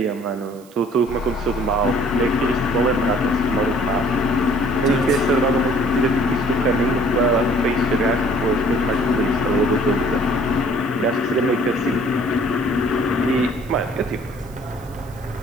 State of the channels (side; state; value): right; noise; hiss, 26 dB below the sound